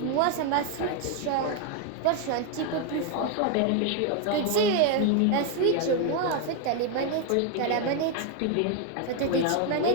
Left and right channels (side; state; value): both; different; correlation 0.01